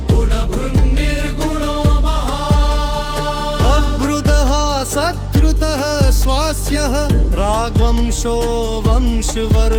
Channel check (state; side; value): identical; both; correlation 1.00